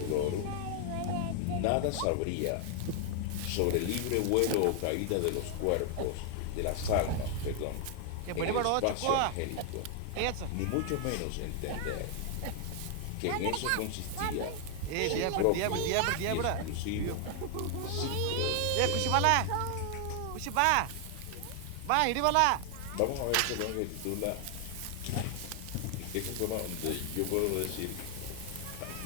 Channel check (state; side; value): different; both; correlation 0.00